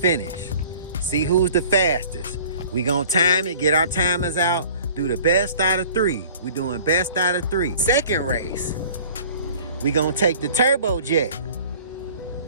See who's the fastest. We gonna time it, get our timers out, do the best out of 3. We're doing best out of 3. Second race, we gonna take the turbojet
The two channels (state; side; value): inverted; both; correlation -0.48